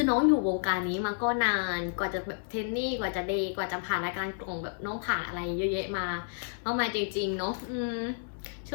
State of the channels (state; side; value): silent; right; 57 dB below the other